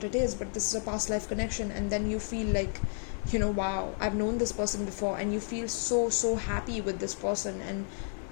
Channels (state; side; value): silent; right; 57 dB below the other